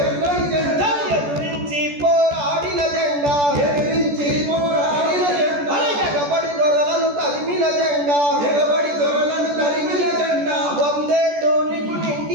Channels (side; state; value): left; late; 14 ms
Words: ఎర్రని జెండా ఎదురించి పోరాడిన జెండా ఎదిరించి పోరాడిన జెండా ఎగబడి దొరలను తరిమిన జెండా ఎగబడి దొరలను తరిమిన జెండా వందేళ్ళు నీకు